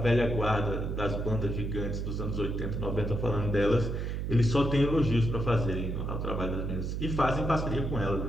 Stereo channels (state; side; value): noise; right; hum, 2 dB below the sound